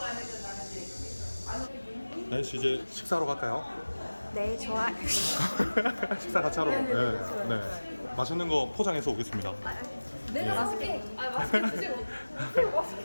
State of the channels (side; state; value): both; inverted; correlation -1.00